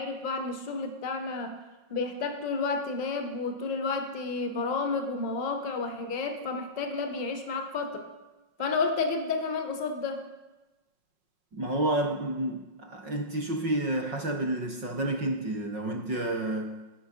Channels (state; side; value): late; left; 5.4 ms